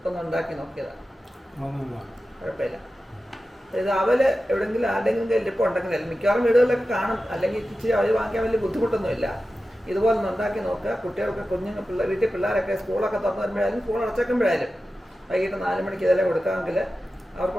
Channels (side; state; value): both; normal; correlation 0.93